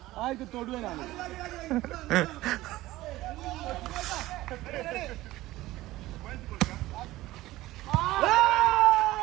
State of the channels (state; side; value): quieter; left; 17.1 dB